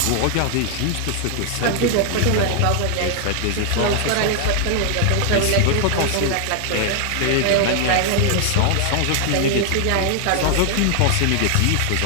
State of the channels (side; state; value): both; different; correlation 0.00